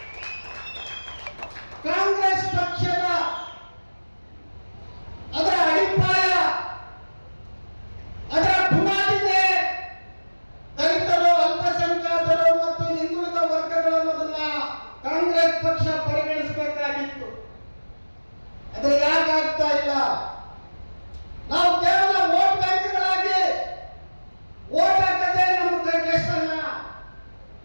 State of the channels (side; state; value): both; inverted; correlation -1.00